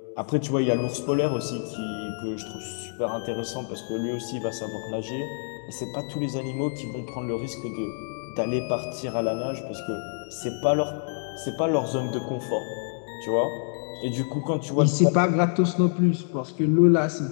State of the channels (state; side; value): silent; right; 56 dB below the other